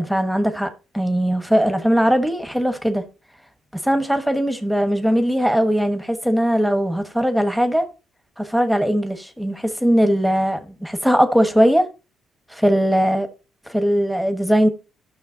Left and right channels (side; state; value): both; normal; correlation 0.97